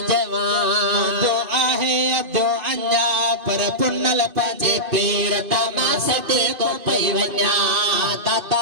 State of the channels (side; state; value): left; late; 2.5 ms